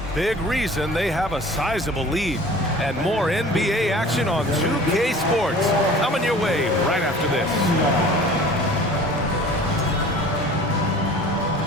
big reason they have a sizable lead. And more NBA action on 2K Sports coming your way right after this.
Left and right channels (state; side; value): normal; both; correlation 0.45